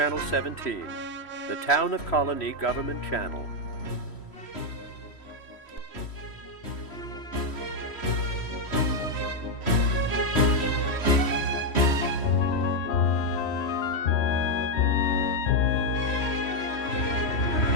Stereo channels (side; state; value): right; late; 3.1 ms